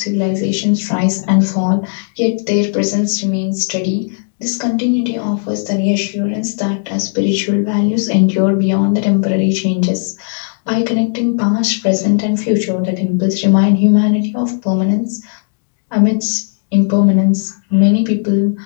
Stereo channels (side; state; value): right; silent; digital silence